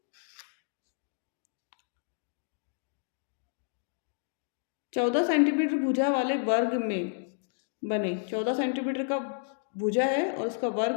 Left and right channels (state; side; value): silent; right; digital silence